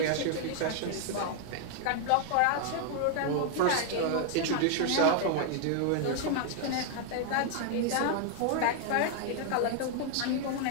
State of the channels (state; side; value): different; both; correlation 0.00